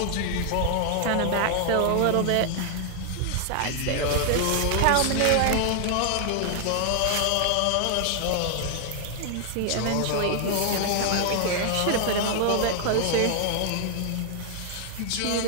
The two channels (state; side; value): different; both; correlation 0.00